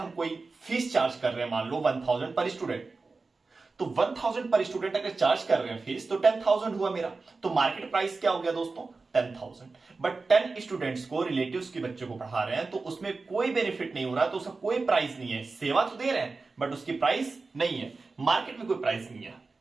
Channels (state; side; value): quieter; left; 4.0 dB